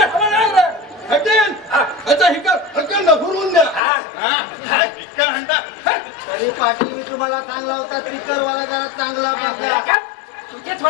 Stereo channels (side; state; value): right; drops out; at 3.8 s